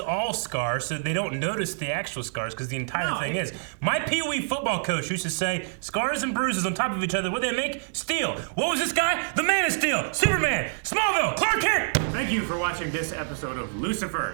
scars, so they don't notice the actual scars, because the entire No, thing it- is. My Pee-wee football coach used to say, scars and bruises on top of each other, what do they make? Steel. What was this guy? The Man of Steel. Superman. Smallville. Clark Kent. Thank you for watching this episode of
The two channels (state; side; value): silent; left; 61 dB below the other